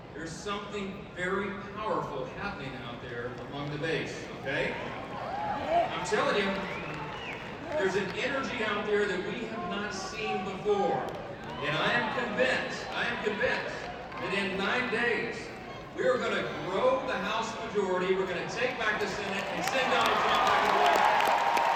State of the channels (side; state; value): both; identical; correlation 1.00